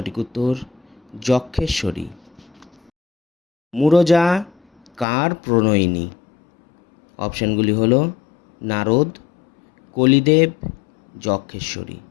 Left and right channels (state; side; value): drops out; right; at 5.1 s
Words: উত্তর যক্ষেশ্বরী। মুরজা কার প্রণয়িনী? অপশানগুলি হলো নারদ, কলিদেব, যক্ষেশ্বরী।